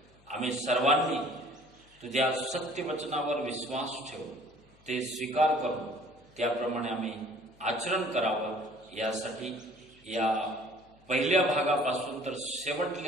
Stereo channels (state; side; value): noise; left; hum, 29 dB below the sound